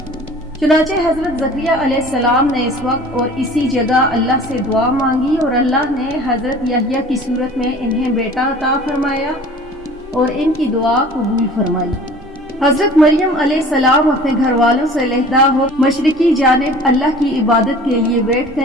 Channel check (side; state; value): both; normal; correlation 0.45